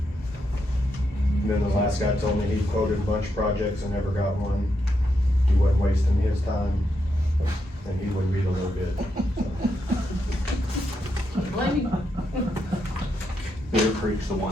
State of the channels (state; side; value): normal; both; correlation 0.82